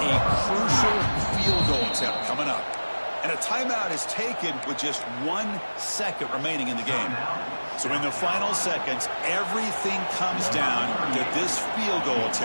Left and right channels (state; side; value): inverted; both; correlation -1.00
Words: a crucial field goal attempt coming up. And a timeout is taken with just 1 second remaining in the game. So in the final seconds, everything comes down to this field goal